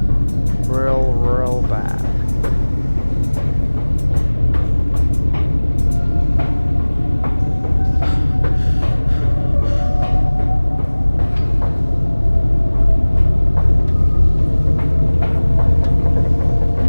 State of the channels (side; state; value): both; inverted; correlation -1.00